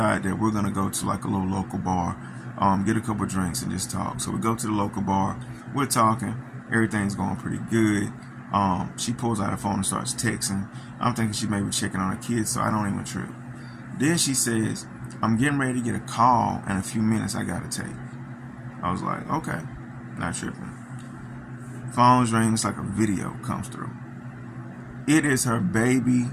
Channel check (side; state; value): both; identical; correlation 1.00